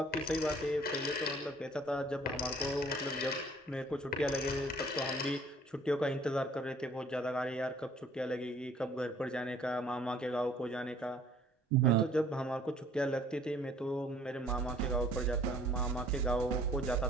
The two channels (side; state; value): both; normal; correlation 0.56